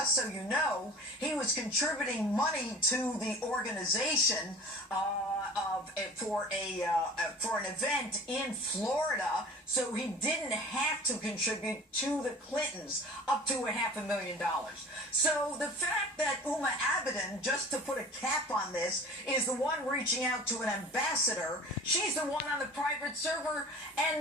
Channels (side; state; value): both; normal; correlation 0.41